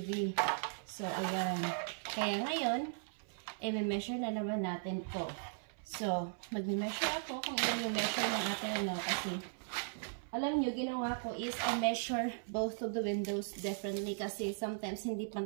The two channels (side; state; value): left; silent; 53 dB below the other